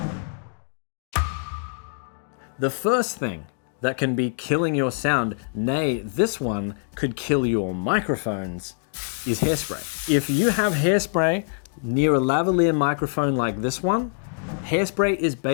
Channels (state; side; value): silent; right; digital silence